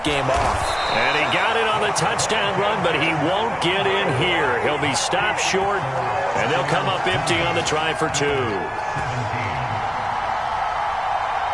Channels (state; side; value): identical; both; correlation 1.00